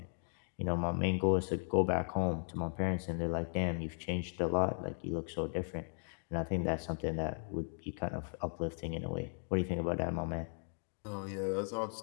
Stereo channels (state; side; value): silent; right; 53 dB below the other